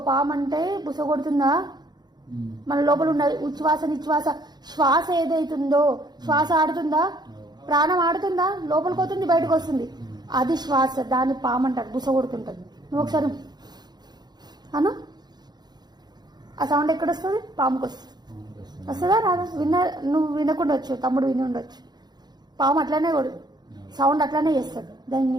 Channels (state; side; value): late; left; 0.20 ms